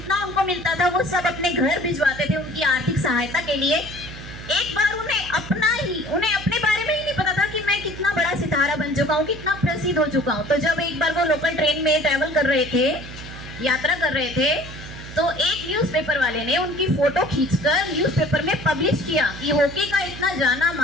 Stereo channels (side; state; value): right; noise; hum, 13 dB below the sound